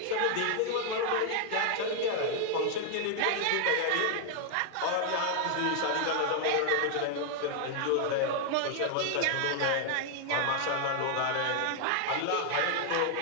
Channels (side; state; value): both; different; correlation 0.00